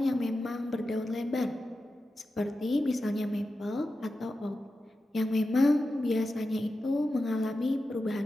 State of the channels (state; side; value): normal; both; correlation 0.91